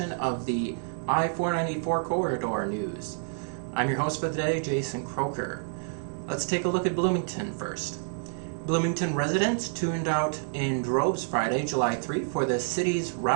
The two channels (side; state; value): left; silent; digital silence